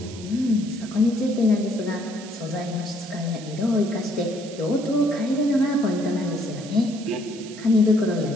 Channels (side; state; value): right; noise; hiss, 17 dB below the sound